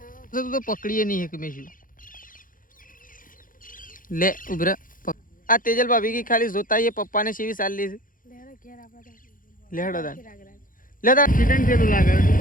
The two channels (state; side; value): late; right; 0.40 ms